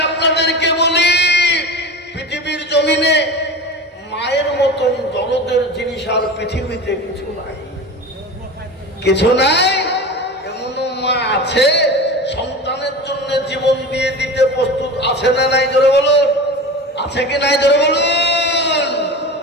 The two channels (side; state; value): both; normal; correlation 0.31